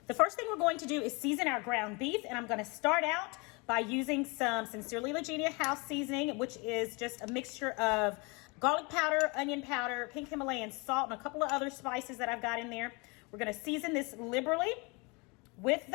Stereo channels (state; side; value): quieter; right; 28.7 dB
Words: The first thing we're going to do is season our ground beef, and I'm going to start out by using some Sincerely Legenia house seasoning, which is just a mixture of garlic powder, onion powder, pink Himalayan salt, and a couple of other spices that I've got in there. We're going to season this liberally with